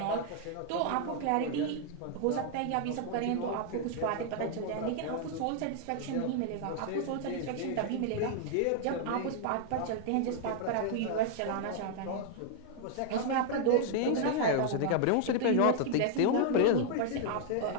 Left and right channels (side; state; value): both; different; correlation 0.00